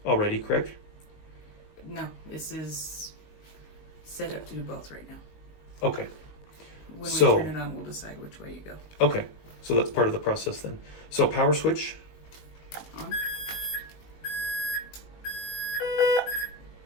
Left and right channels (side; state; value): right; late; 20 ms